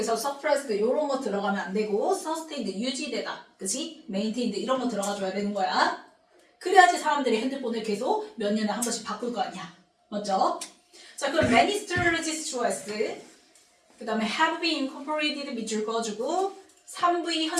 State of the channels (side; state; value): both; identical; correlation 1.00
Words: suppressed 이런 거 들어가면 안 되고 sustained 유지되다. 그치? maintained 이런 거 들어가줘야 되는 거야. 그래야지 사람들이 핸드폰을 계속 몇 년에 한 번씩 바꿀 거 아니야. 맞죠? 자, 그럼 many strategies choice. 그 다음에 have been incorporated 밑줄 그어주고 3V